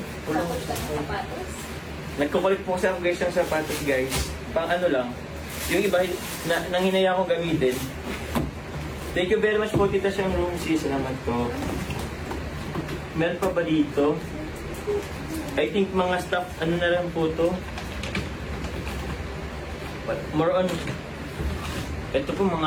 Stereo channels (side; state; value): both; identical; correlation 1.00